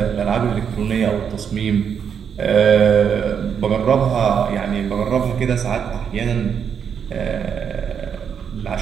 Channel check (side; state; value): left; quieter; 7.5 dB